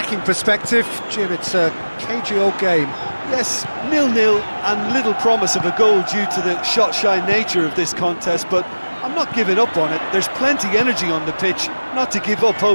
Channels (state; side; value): inverted; both; correlation -1.00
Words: perspective. Jim, it's a cagey old game. Yes, 0-0 and little promise of a goal due to the shot-shy nature of this contest, but I'm not giving up on it. There's plenty energy on the pitch, not to give up